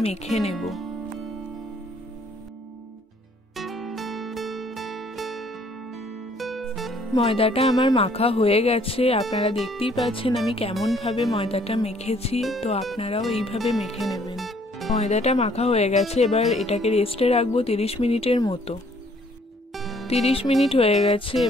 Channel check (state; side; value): normal; both; correlation 0.62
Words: মেখে নেব। ময়দাটা আমার মাখা হয়ে গেছে, আপনারা দেখতেই পাচ্ছেন আমি কেমন ভাবে ময়দাটা মেখেছি। তো আপনারাও এইভাবে মেখে নেবেন। ময়দাটা মাখা হয়ে গেছে, এবার এটাকে রেস্টে রাখবো 30 মিনিটের মতো। 30 মিনিট হয়ে গেছে,